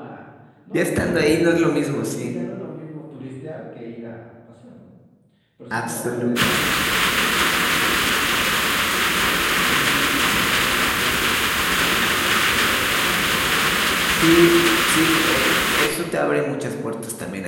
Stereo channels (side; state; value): both; identical; correlation 1.00